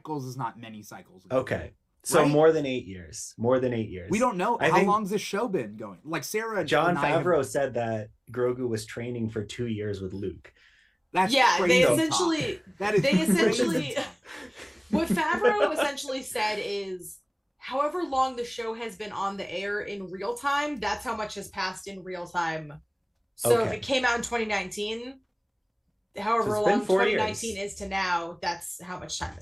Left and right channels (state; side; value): identical; both; correlation 1.00